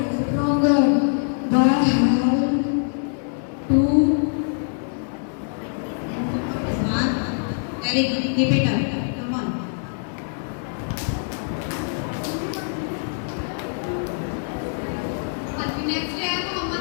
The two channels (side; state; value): right; silent; 63 dB below the other